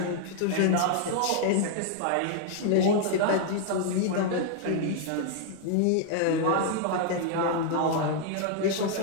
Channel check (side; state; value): both; different; correlation 0.00